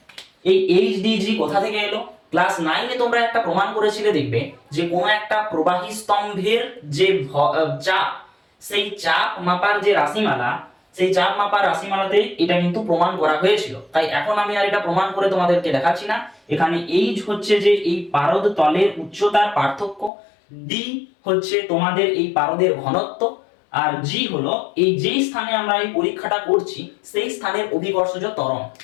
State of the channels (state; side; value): drops out; right; at 20.1 s